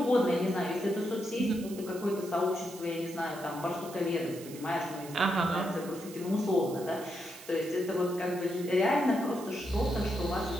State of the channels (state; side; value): noise; right; hiss, 16 dB below the sound